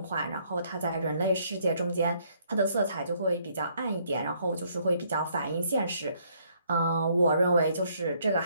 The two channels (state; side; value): inverted; both; correlation -0.67